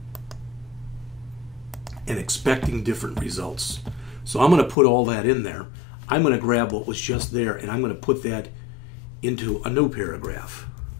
and expecting different results. So I'm going to put all that in there. I'm going to grab what was just there and I'm going to put that into a new paragraph.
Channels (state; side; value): drops out; right; at 4.8 s